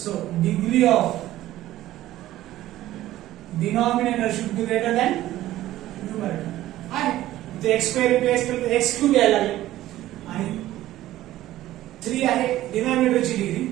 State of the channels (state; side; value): quieter; left; 14.7 dB